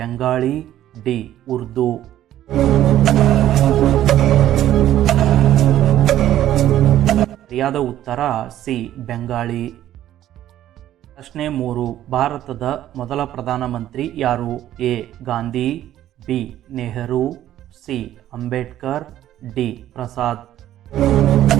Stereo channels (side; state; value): left; quieter; 12.6 dB